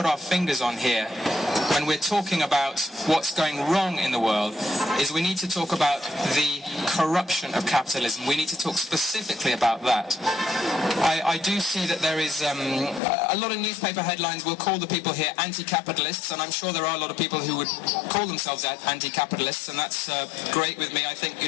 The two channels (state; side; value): drops out; right; at 13.0 s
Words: our fingers on here when we're talking about what's going wrong in the world is we need to talk about the corruption of capitalism. We need to talk specifically about that. I do see that there is a lot of newspaper headlines will call the people here anti-capitalists, and I'm sure there are a lot of people who would call themselves anti-capitalists, and that's great with me. I think,